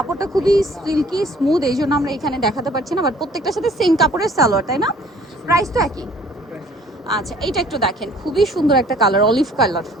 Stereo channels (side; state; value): both; normal; correlation 0.55